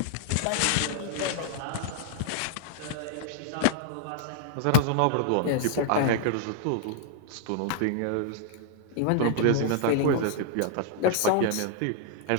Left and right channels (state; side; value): different; both; correlation -0.01